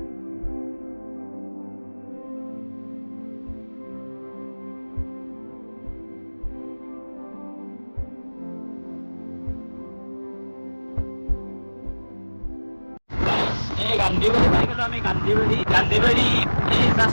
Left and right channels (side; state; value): both; inverted; correlation -1.00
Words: গান্ধীবাৰী পাই গ'লো আমি, গান্ধীবাৰী এই